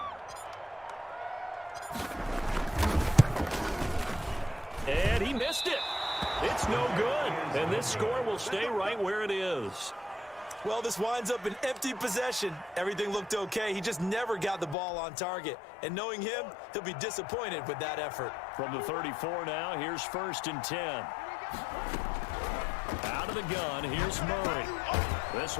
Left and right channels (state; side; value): drops out; right; at 14.8 s